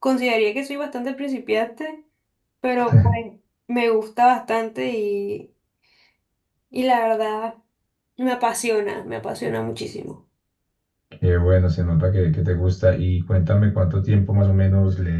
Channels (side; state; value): both; identical; correlation 1.00